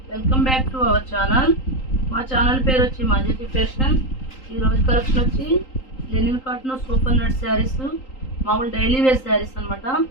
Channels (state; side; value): late; right; 3.8 ms